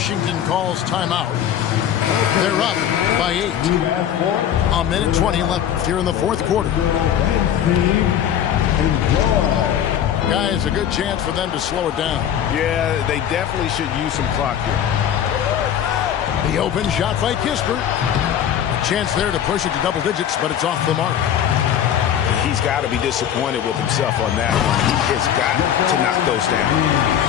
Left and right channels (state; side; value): quieter; right; 9.8 dB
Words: calls timeout. They're up by 8. A minute 20 left here in the fourth quarter. Guys, a good chance for them to slow it down. Yeah, they definitely should use some clock here. The open shot by Kispert. A chance there to push it to double digits, but it's off the mark. He's got to be disappointed with himself on that one. He has got to knock those down.